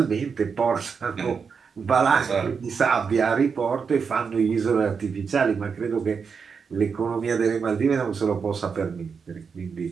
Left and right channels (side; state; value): left; quieter; 5.8 dB